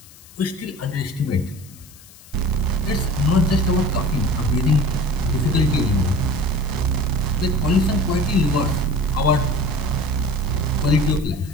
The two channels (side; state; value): left; noise; hiss, 22 dB below the sound